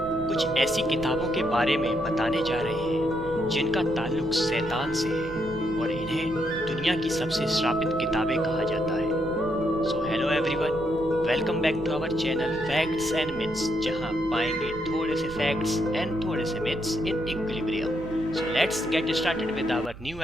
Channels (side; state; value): right; noise; hum, 16 dB below the sound